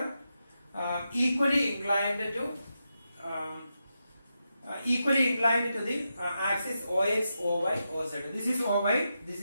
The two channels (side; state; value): both; inverted; correlation -0.87